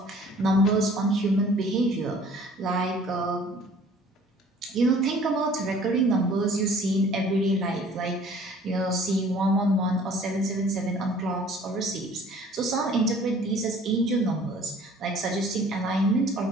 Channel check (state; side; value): normal; both; correlation 0.52